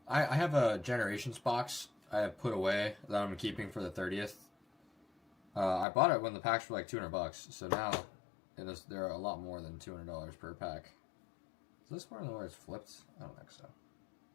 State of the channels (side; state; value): right; drops out; at 5.9 s